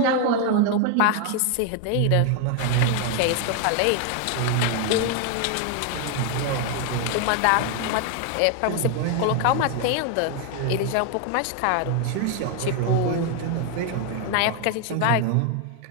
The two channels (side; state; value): both; different; correlation 0.01